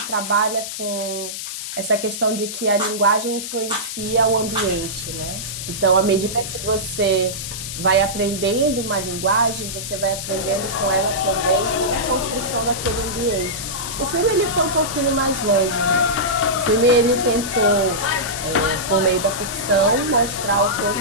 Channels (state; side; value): noise; left; hiss, 7 dB below the sound